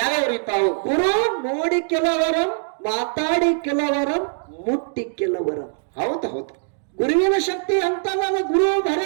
ಅವು? ಗುರು ನೋಡಿ ಕೆಲವರಂ, ಮಾತಾಡಿ ಕೆಲವರಂ, ಮುಟ್ಟಿ ಕೆಲವರಂ. ಹೌದು ಹೌದು. ಗುರುವಿನ ಶಕ್ತಿ ಅಂತಲ್ಲ. ಗುರು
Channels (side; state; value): left; silent; digital silence